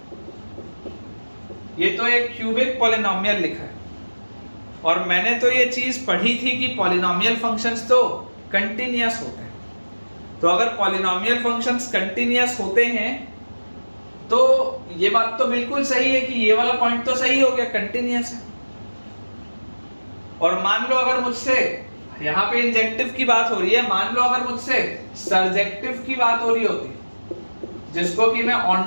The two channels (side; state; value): both; inverted; correlation -1.00